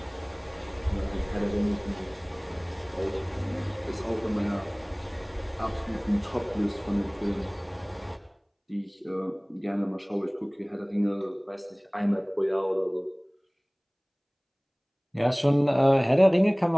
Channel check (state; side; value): identical; both; correlation 1.00